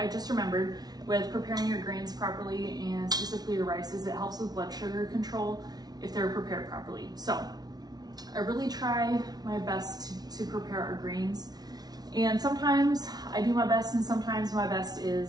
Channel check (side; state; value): left; late; 0.19 ms